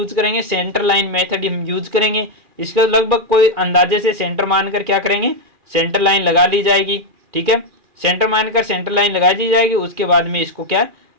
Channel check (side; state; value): left; late; 2.4 ms